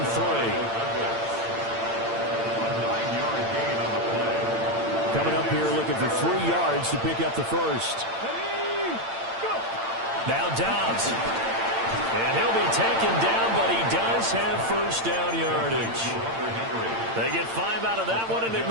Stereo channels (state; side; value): late; left; 8.8 ms